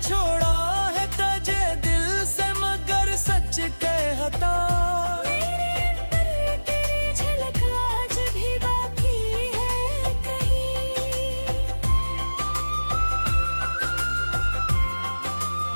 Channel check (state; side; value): inverted; both; correlation -1.00